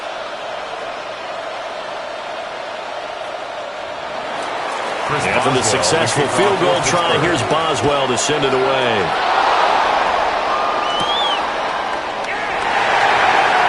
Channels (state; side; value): identical; both; correlation 1.00